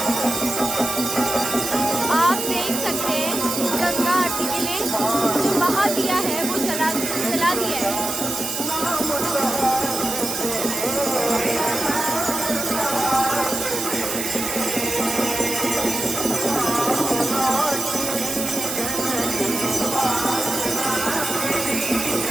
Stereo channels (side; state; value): right; noise; hiss, 3 dB below the sound